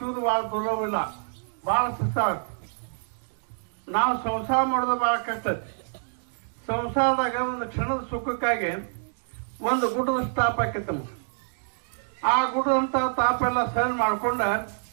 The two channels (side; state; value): left; silent; digital silence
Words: ಬಹಳ ದುರ್ಲಭವಿಲ್ಲ, ಬಹಳ ಕಷ್ಟ ಆಗುತ್ತೆ. ನಾವು ಸಂಸಾರ ಮಾಡೋದು ಬಹಳ ಕಷ್ಟ ಐತಿ. ಸಂಸಾರದಾಗ ಒಂದು ಕ್ಷಣದ ಸುಖಕ್ಕಾಗಿ ಒಂದು ಗುಡ್ಡದ ತಾಪ ಆಕೈತಿ ನಮಗೆ. ಆ ಗುಡ್ಡದಂತ ತಾಪ ಎಲ್ಲ ಸಹನ ಮಾಡ್ಕೊಂಡ